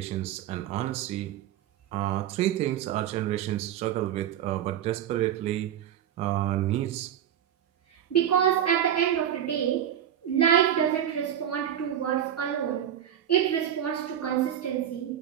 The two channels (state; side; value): quieter; left; 10.3 dB